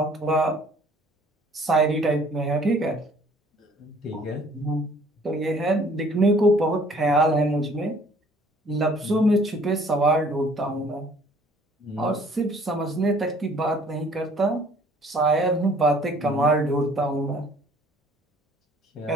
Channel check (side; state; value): both; normal; correlation 0.57